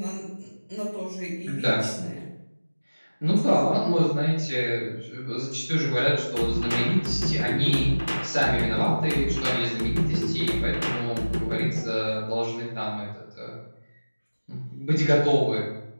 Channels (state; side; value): inverted; both; correlation -1.00